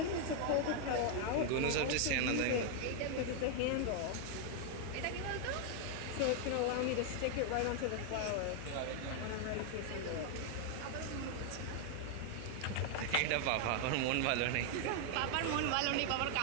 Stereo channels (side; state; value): both; different; correlation 0.00